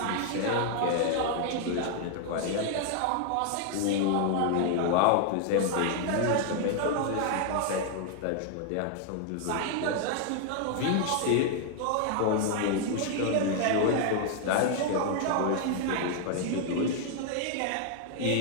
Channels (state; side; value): different; both; correlation 0.00